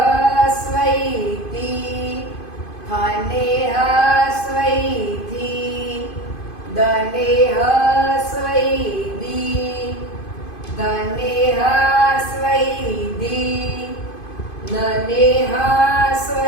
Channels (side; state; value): right; late; 2.5 ms